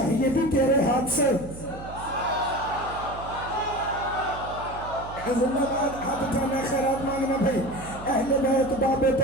بھی تیرے ہاتھ سے. زندہ باد, ہاتھ اٹھانا, خیرات مانگنا بھائی. اہل بیت باب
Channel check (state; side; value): noise; right; hum, 13 dB below the sound